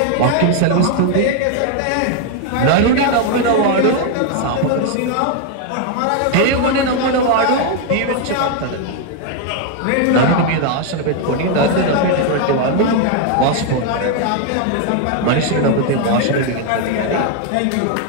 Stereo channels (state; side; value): different; both; correlation 0.01